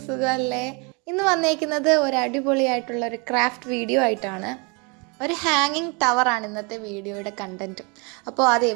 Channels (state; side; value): quieter; left; 31.8 dB